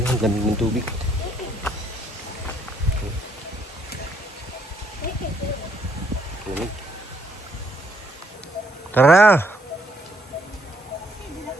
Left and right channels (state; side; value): normal; both; correlation 0.70